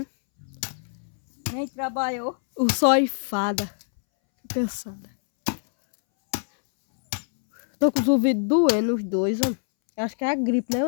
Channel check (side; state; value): right; silent; 62 dB below the other